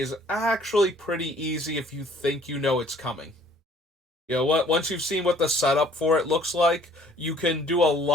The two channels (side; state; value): both; normal; correlation 0.57